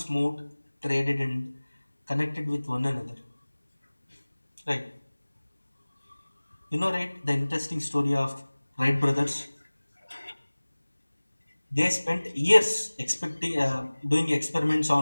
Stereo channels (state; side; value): inverted; both; correlation -1.00